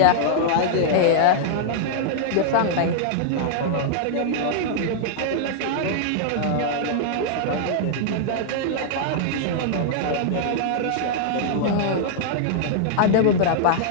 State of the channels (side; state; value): both; different; correlation -0.01